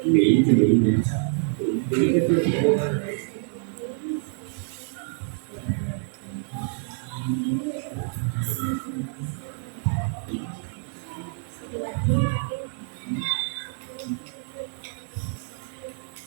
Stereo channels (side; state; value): left; silent; 59 dB below the other